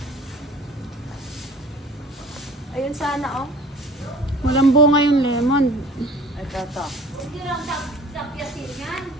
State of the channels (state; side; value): normal; both; correlation 0.46